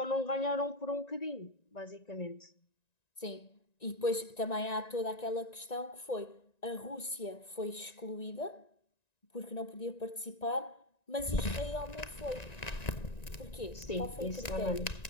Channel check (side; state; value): right; late; 1.9 ms